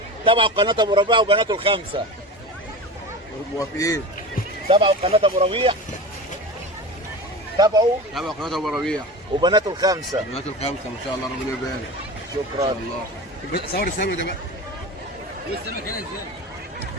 تابعوا قناة ابو ربيع وبناته الخمسة. موافقين. تابعوا قناة ابو ربيع، تابعوا قناة ابو ربيع وبناته الخمسة. بنات الخمسة ما شاء الله، ربنا يبارك. شكرا. الله. صور السمك ده بقى. السمك هنا ازاي؟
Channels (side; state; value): both; normal; correlation 0.30